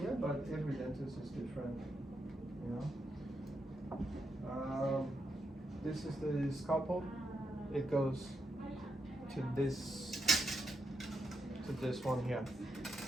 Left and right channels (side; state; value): both; normal; correlation 0.83